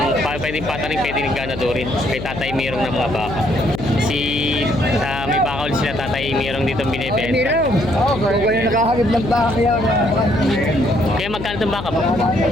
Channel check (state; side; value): noise; left; hum, 9 dB below the sound